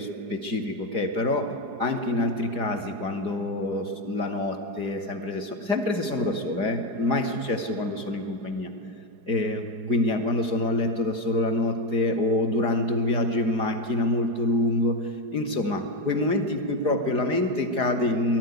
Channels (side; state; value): left; late; 4.8 ms